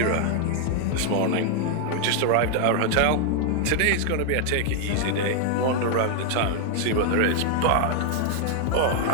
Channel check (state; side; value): different; both; correlation 0.00